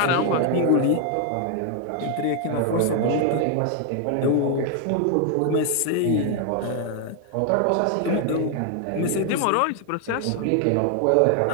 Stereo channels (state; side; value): different; both; correlation 0.01